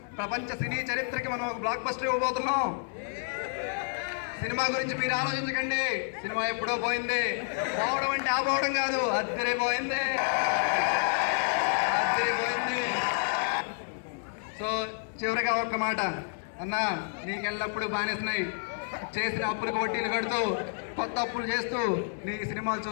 ప్రపంచ సినీ చరిత్రకి మనం ఒక బ్లాక్ బస్టర్ ఇవ్వబోతున్నాం. సినిమా గురించి మీరు ఆలోచించకండి, సినిమా ఎప్పుడో పోయింది. పోవడం అంటే ఆపోవడం కాదు, అద్దరిపోయింది. సో చివరిగా ఒక్క మాట, అన్న నీకెళ్ళప్పుడు బానేసినాయి, చేసిన అప్పులకు వడ్డీలు కడుతూ కొత్త అప్పులు చేస్తూ నీ సినిమాలు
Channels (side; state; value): right; silent; digital silence